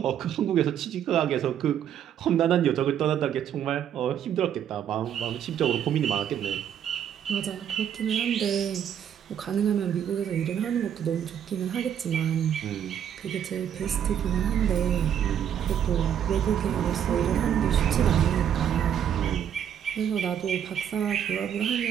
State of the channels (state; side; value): quieter; left; 9.3 dB